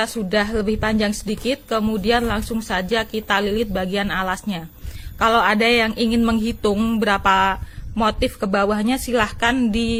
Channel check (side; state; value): both; identical; correlation 1.00